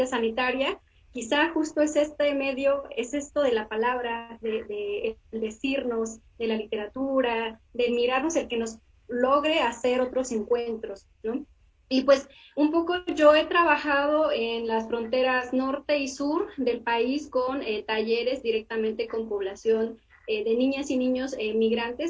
sanitaria, quizá justo es este medio, es esto de la palabra, de decirnos, de la literatura, de mirarnos, el que nos logre hacer otros encuentros, ¿no? Y pues un poco yo he trabajado en las fronteras norte y sur del país con talleres directamente con población de niñas y niños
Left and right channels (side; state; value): both; identical; correlation 1.00